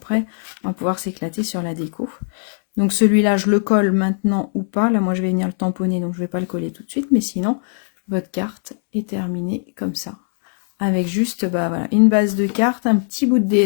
on va pouvoir s'éclater sur la déco. Donc celui-là, je le colle maintenant ou pas. Là, moi, je vais venir le tamponner, donc je ne vais pas le coller tout de suite. Mais sinon, votre carte est terminée comme ça. Avec juste bah, voilà, une base de carte, un petit bout de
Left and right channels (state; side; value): silent; right; 66 dB below the other